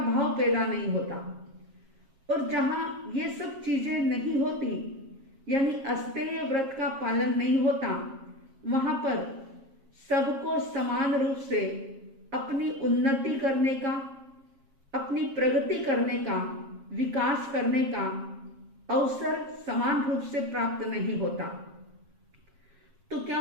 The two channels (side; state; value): left; late; 7.4 ms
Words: भाव पैदा नहीं होता। और जहां ये सब चीजें नहीं होती, यानी अस्तेय व्रत का पालन नहीं होता, वहां पर सबको समान रूप से अपनी उन्नति करने का, अपनी प्रगति करने का, विकास करने का अवसर समान रूप से प्राप्त नहीं होता। तो क्या